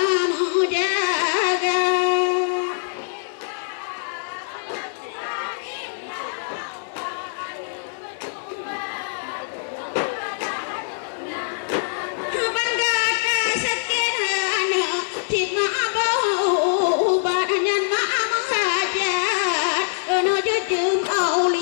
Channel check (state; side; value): silent; right; digital silence